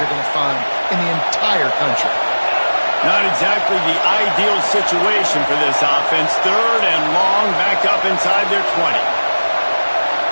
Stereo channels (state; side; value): inverted; both; correlation -1.00